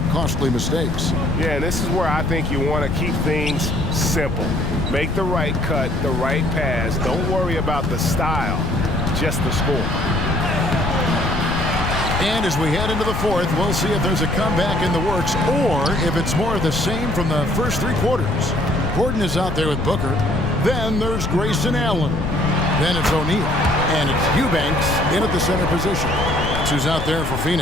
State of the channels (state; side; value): noise; left; rumble, 3 dB below the sound